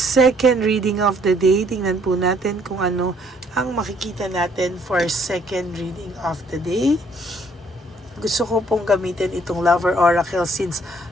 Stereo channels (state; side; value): normal; both; correlation 0.64